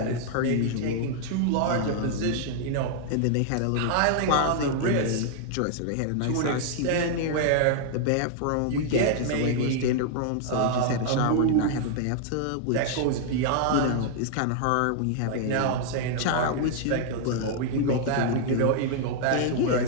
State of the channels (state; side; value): different; both; correlation -0.01